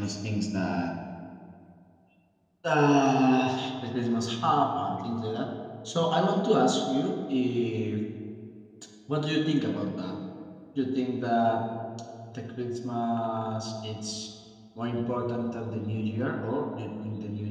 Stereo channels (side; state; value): both; identical; correlation 1.00